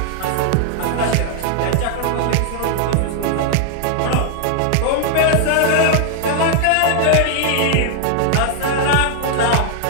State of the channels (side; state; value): both; different; correlation 0.00